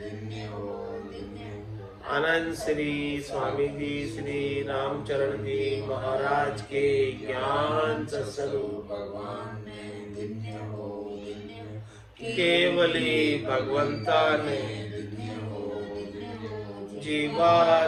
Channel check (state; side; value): identical; both; correlation 1.00